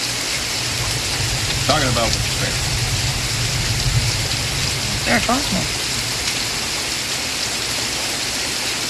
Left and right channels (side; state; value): both; identical; correlation 1.00